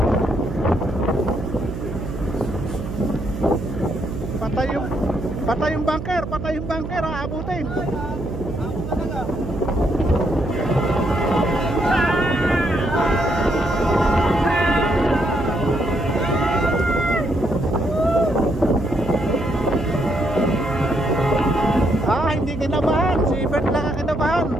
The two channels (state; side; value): noise; right; hum, 7 dB below the sound